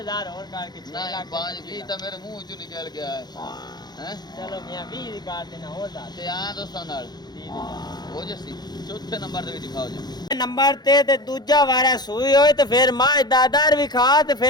ਹੋਰ ਕਰਕੇ 6 ਨਹੀਂ ਲੱਖ 5 20 ਤਾਂ ਮੇਰੇ ਮੂੰਹ ਚੋਂ ਨਿਕਲ ਗਿਆ ਹੈ ਚਲੋ ਮੀਆਂ 20 ਦੀ ਕਾਰ ਦੇਣਾ ਹੋਰ ਦੱਸ ਤੇ ਆ ਦੋਸਤਾਂ ਨਾਲ 30,000 ਹੋ ਜੱਸੀ ਚੌਥੇ ਨੰਬਰ ਤੇ ਵੀ ਦਿਖਾਓ ਜੀ ਨੰਬਰ ਤੇ ਦੂਜਾ ਵਾਰਾ ਸੂਈ ਹੋਏ ਤੇ ਫਿਰ ਮਾਂ ਦਾਦਰ ਵੀ ਖਾ ਤੇ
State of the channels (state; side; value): late; right; 0.20 ms